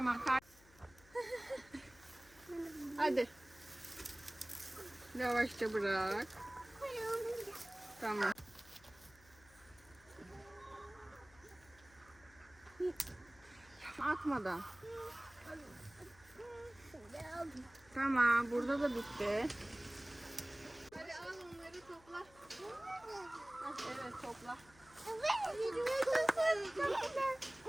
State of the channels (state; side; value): noise; left; hum, 25 dB below the sound